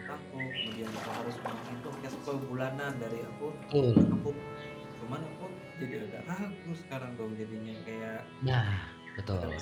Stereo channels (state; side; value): identical; both; correlation 1.00